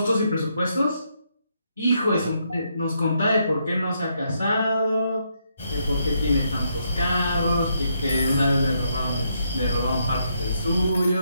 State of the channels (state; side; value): inverted; both; correlation -0.77